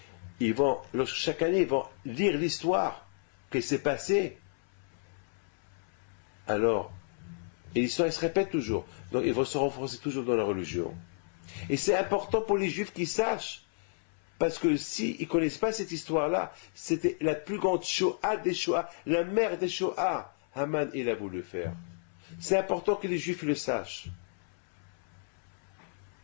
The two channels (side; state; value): right; silent; 57 dB below the other